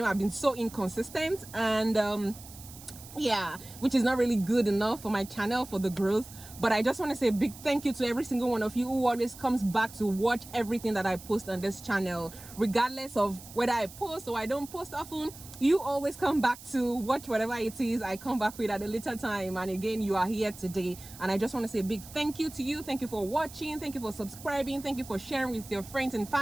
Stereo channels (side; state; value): right; noise; hiss, 17 dB below the sound